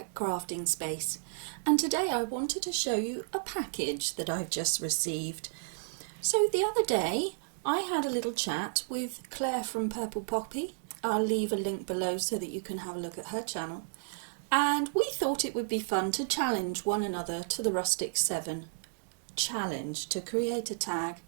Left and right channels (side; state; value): left; silent; digital silence